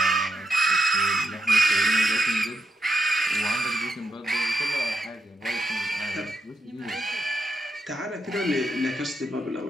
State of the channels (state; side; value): normal; both; correlation 0.84